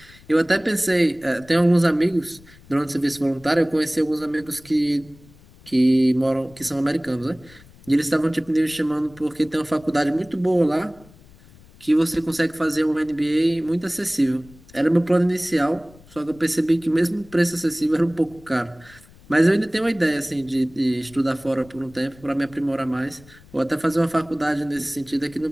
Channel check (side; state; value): left; noise; rumble, 24 dB below the sound